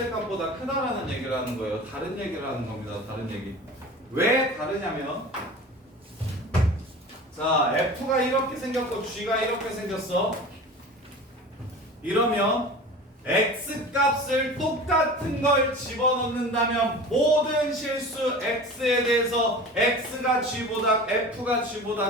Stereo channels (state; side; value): normal; both; correlation 0.37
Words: 크다라는 얘기를 하는 거예요. 다른 얘기를 하는 겁니다. 다른 얘기. 왜 다르냐면, 자, f가 이렇게 생겼고 g가 이렇게 생겼어. 이러면 x 값을 똑같은 걸 집어넣는다면 모든 실수 x에 대해서 x가 g보다 f가